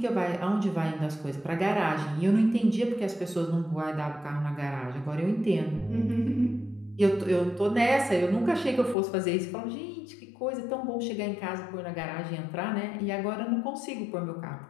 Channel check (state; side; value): drops out; right; at 9.0 s